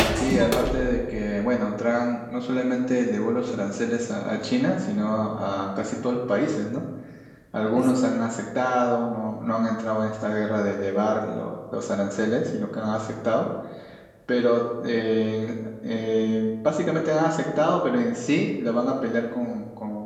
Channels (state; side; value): identical; both; correlation 1.00